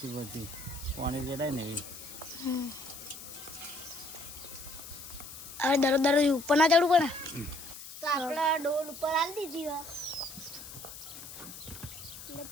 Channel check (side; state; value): left; noise; hiss, 13 dB below the sound